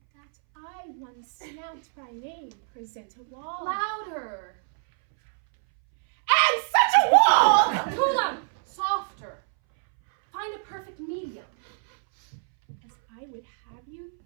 that I, one Snout by name, present a wall. Louder. And such a wall! Too loud. Softer. Find a perfect medium. As I would have you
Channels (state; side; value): silent; left; 61 dB below the other